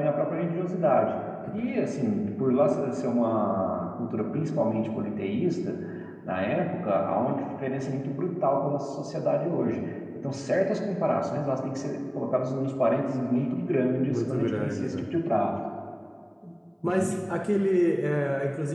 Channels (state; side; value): identical; both; correlation 1.00